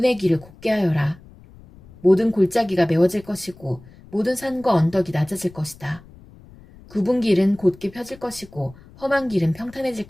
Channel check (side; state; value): left; noise; rumble, 23 dB below the sound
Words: 길을 곧게 하여라. 모든 골짜기가 메워질 것이고 모든 산과 언덕이 낮아질 것이다. 굽은 길은 곧게 펴질 것이고 험한 길은 평탄해질